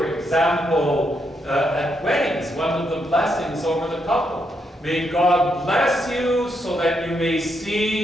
example, at weddings, one of the blessings over the couple, may God bless you so that you may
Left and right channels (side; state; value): both; normal; correlation 0.79